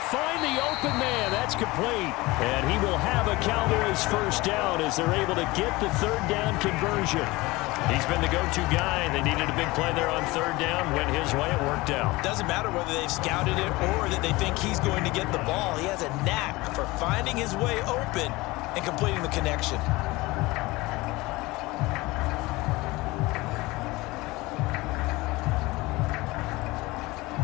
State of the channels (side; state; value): right; quieter; 21.4 dB